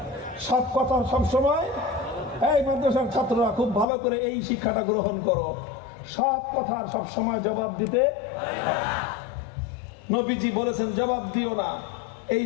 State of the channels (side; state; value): right; drops out; at 3.9 s